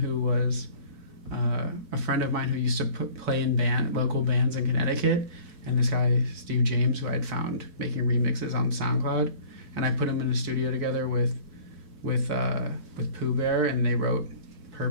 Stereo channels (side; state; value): left; late; 4.3 ms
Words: was a friend of mine who used to play in local bands in Connecticut, and this guy Steve James, who I'd found making remixes on SoundCloud. And I put them in the studio together with Pooh Bear, and they wrote